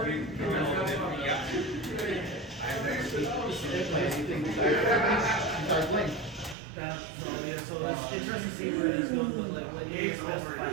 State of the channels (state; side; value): drops out; left; at 6.6 s